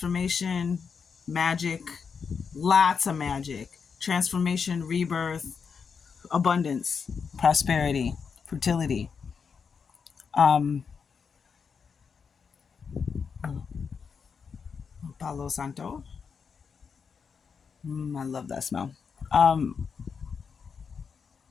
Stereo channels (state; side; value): quieter; right; 6.0 dB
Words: magic, lots of magic, transformation, rebirth, abundance, prosperity, fertility. Palo Santo. I love that smell.